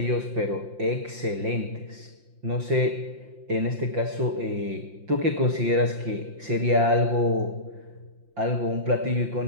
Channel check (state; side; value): late; left; 5.7 ms